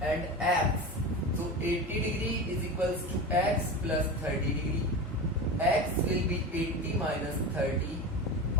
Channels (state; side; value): normal; both; correlation 0.27